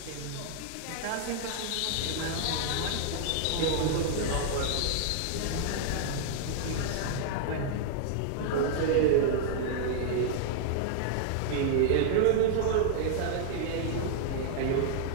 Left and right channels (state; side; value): different; both; correlation -0.01